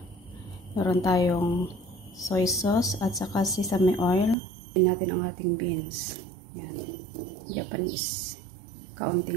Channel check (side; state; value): left; drops out; at 4.4 s